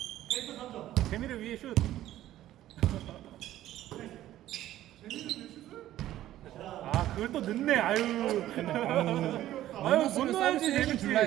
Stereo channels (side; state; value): left; quieter; 13.6 dB